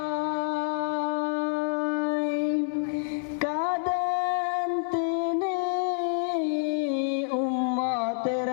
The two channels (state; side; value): silent; right; 60 dB below the other